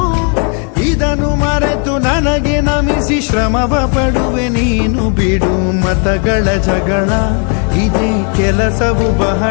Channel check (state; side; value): quieter; right; 39.6 dB